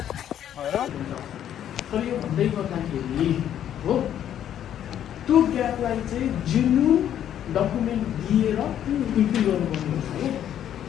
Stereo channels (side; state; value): right; quieter; 10.4 dB